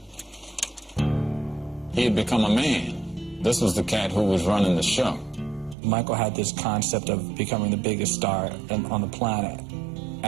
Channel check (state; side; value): drops out; left; at 5.8 s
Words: He had become a man. This was the cat who was running the show. Michael had this concept of becoming the biggest star on the planet.